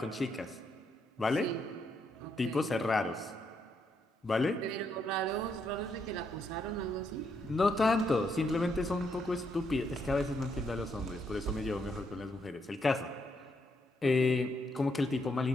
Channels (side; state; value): both; normal; correlation 0.77